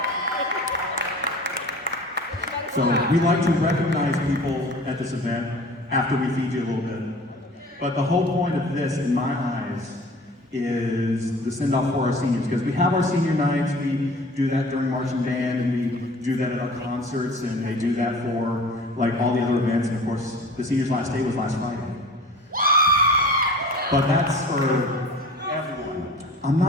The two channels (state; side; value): normal; both; correlation 0.43